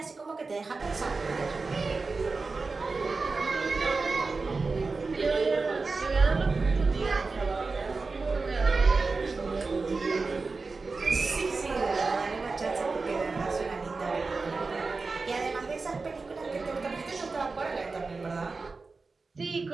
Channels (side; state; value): left; quieter; 4.1 dB